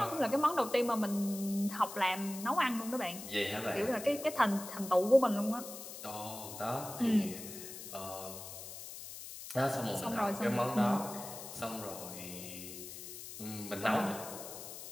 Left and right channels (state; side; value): noise; left; hiss, 11 dB below the sound